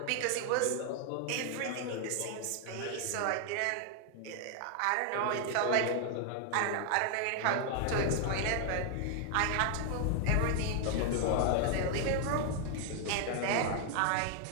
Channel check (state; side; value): different; both; correlation 0.00